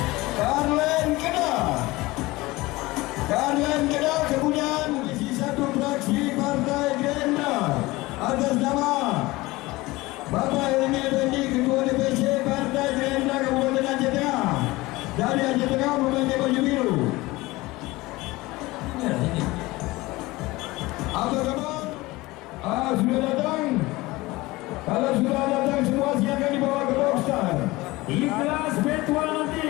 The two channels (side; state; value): right; quieter; 20.6 dB